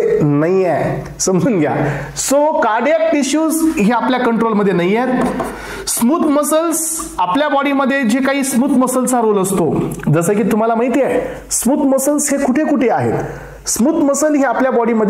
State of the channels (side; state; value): both; identical; correlation 1.00